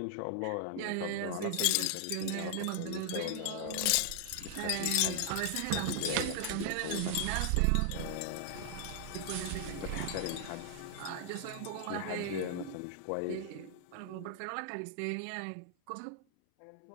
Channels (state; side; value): different; both; correlation 0.00